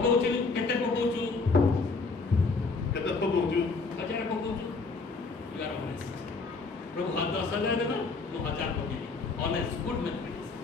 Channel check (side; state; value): right; quieter; 4.1 dB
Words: କେତେ ପକଉଛୁ କେତେ ପକଉଛୁ 1000 ପକଉଛୁ you are honest ପ୍ରଭୁ 10,000 ଦେବା ମୁଁ 1000 ପକେଇବି honest good mathematics